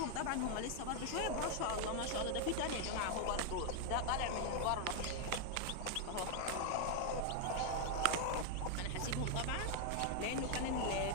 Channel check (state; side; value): different; both; correlation 0.00